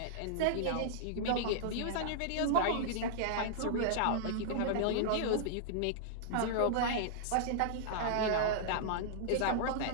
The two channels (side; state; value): both; different; correlation -0.01